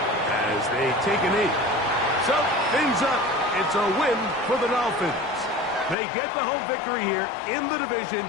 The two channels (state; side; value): drops out; right; at 6.0 s